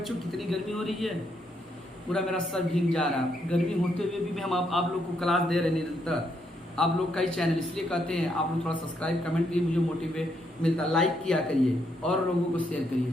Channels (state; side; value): normal; both; correlation 0.76